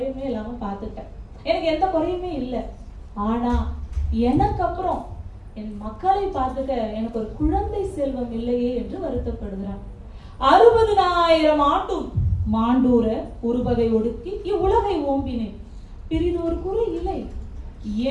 இல்லாம பார்த்துட்டேன். எனக்கு எந்த குறையுமே இல்லை. ஆனா எனக்கு அப்புறம் என் மக்களை பார்த்துக்க எனக்கு ஒரு குழந்தை செல்வம் இல்லையே என்று வருத்தப்படுகிறான். 60,000 ஆண்டும் மாண்டூர ஒருவகை ஒடுக்கி இவ்வுலகை ஓம்பினேன், பிரிதொரு குறை இல்லை.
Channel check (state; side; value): identical; both; correlation 1.00